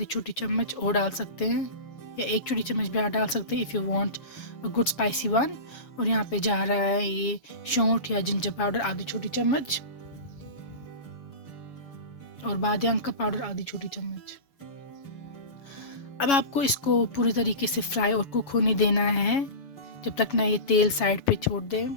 छोटी चम्मच और डाल सकते हैं, या 1 छोटी चम्मच भी डाल सकते हैं if you want a good spicy one. और यहाँ पे जा रहा है ये सौंठ या जिंजर पाउडर आधी छोटी चम्मच, और बादियान का पाउडर आधी छोटी चम्मच। अब आपको इसको पूरी तरीके से फ्राई और कुक होने देना है जब तक ना ये तेल साइड पे छोड़ दे।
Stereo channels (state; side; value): late; right; 7.2 ms